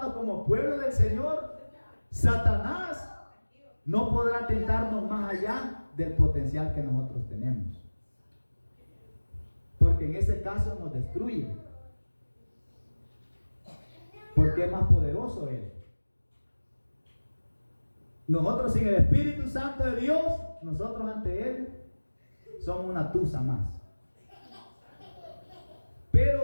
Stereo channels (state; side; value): inverted; both; correlation -1.00